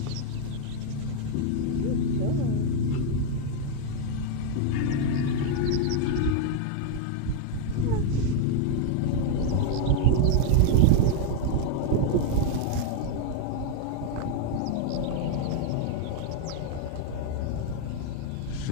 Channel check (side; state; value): both; different; correlation 0.00